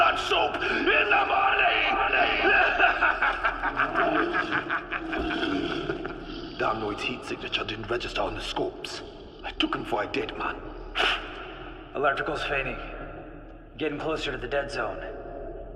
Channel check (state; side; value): identical; both; correlation 1.00